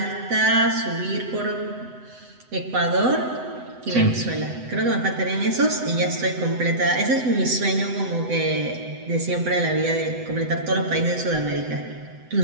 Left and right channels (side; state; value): left; late; 7.9 ms